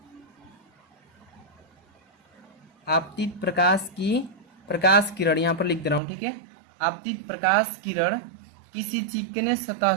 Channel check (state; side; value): drops out; left; at 6.0 s